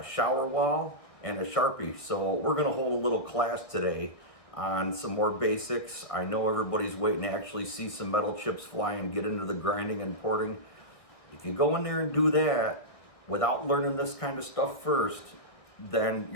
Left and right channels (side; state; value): right; late; 1.6 ms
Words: wall and a Sharpie. So we're going to hold a little class today on some more basics. I know everybody's waiting to actually see some metal chips fly and get into the grinding and porting. If you go in there and do that without learning this kind of stuff first, then